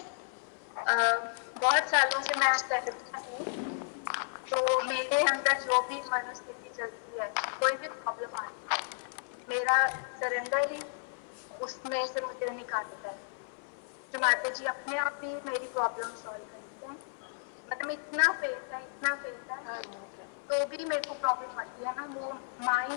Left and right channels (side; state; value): right; silent; 56 dB below the other